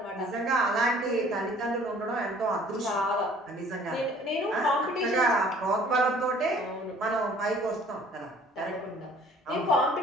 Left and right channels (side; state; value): both; normal; correlation 0.54